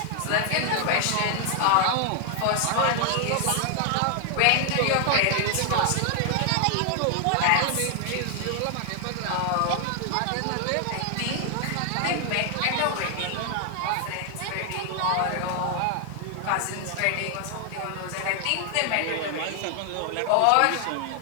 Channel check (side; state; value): both; different; correlation 0.00